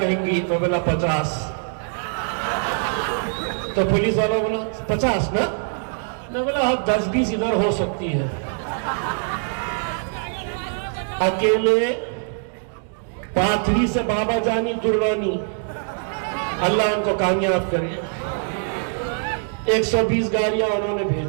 तो बोला 50। तो पुलिस वाला बोला 50 ना, मैं बोला अब 10-20 इधर हो सकती है। अकेले पाथरी से बाबा जानी दुर्रानी, अल्लाह उनको कामयाब करे, 120 गाड़ियां उन्होंने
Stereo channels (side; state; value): left; silent; 58 dB below the other